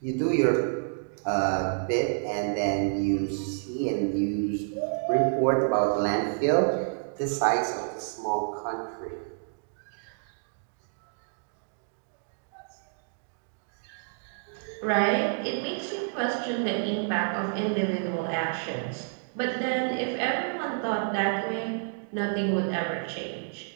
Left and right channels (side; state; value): left; silent; digital silence